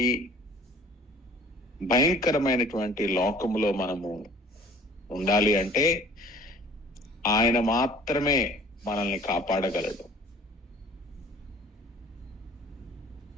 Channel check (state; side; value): normal; both; correlation 0.50